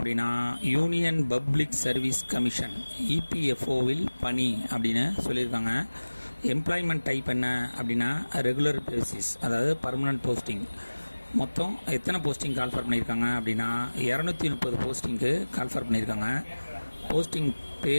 யூனியன் பப்ளிக் சர்வீஸ் கமிஷன் இபிஎஃப்ஓவில் பணி அப்படின்னு சொல்லியிருக்காங்க. எம்ப்ளாய்மெண்ட் டைப் என்ன அப்படின்னா ரெகுலர் பேசிஸ், அதாவது பர்மனன்ட் போஸ்டிங். மொத்தம் எத்தனை போஸ்டிங் கால்ஃபர் பண்ணியிருக்காங்க அப்படின்னா 230 போஸ்டிங்க்கு கால்ஃபர் பண்ணியிருக்காங்க. போஸ்டிங்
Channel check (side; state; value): both; inverted; correlation -1.00